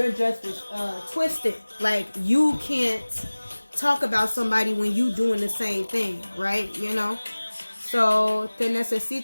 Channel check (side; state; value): both; inverted; correlation -1.00